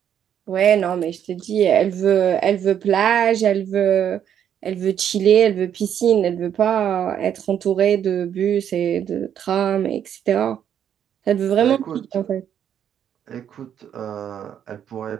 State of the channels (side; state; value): left; quieter; 9.3 dB